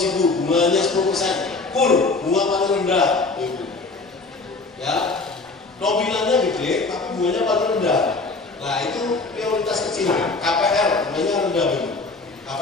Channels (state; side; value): quieter; right; 3.7 dB